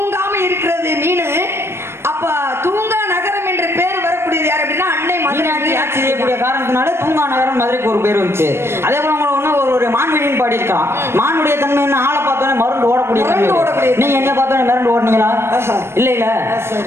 இருக்கிறது மீனு. அப்ப தூங்கா நகரம் என்ற பேர் வரக்கூடியது யார் அப்படின்னா அன்னை மதுரை ஆட்சி செய்யக்கூடிய காரணத்தினால தூங்கா நகரம் மதுரைக்கு ஒரு பேர் வந்துச்சு. அதே போல உங்களை ஒண்ணு ஒரு ஒரு மான்வெளின்னு பாடி இருக்கலாம். மானுடைய தன்மை என்ன? ஆளை பார்த்தோன்னே மருந்து ஓடக்கூடிய தன்மை. நீங்க என்ன பார்த்தோன்னே மிரண்டு ஓடுனீங்களா? இல்ல இல்ல.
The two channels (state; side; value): late; left; 0.12 ms